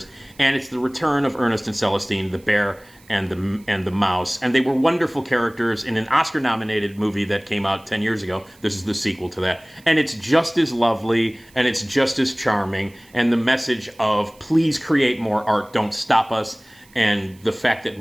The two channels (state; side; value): noise; right; hiss, 28 dB below the sound